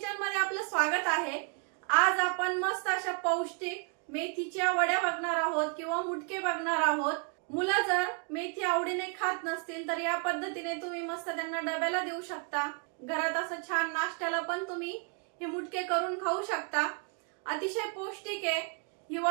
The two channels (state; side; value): quieter; left; 39.5 dB